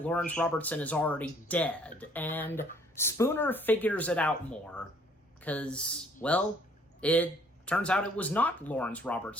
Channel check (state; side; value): normal; both; correlation 0.60